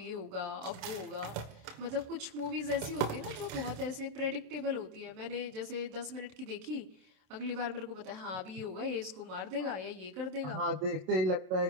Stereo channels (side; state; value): left; late; 27 ms